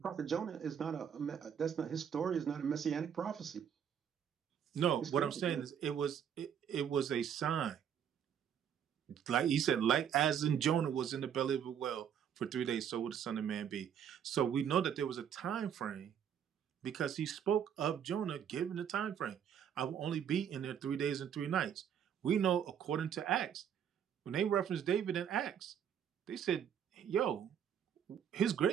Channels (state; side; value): quieter; left; 8.6 dB